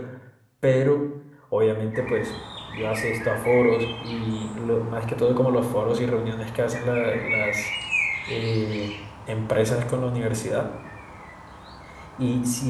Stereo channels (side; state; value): both; identical; correlation 1.00